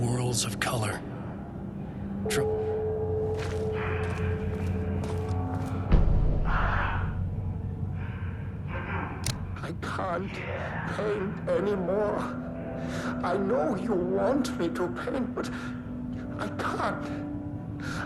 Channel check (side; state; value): both; identical; correlation 1.00